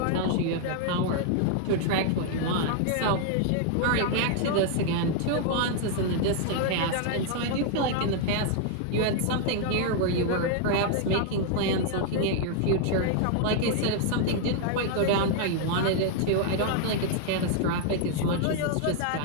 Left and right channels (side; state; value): both; different; correlation 0.00